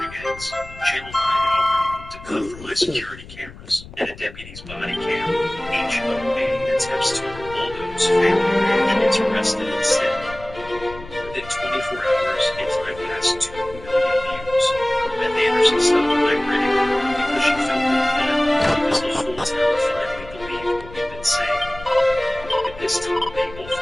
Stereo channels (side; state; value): left; noise; rumble, 17 dB below the sound